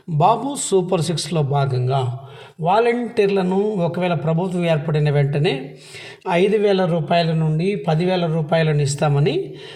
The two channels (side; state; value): both; identical; correlation 1.00